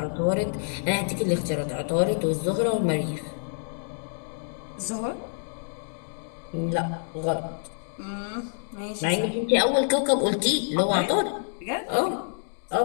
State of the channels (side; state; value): right; silent; digital silence